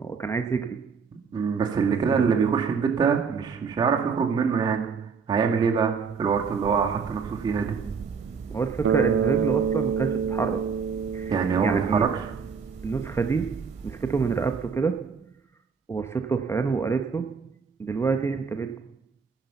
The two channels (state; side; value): quieter; left; 5.7 dB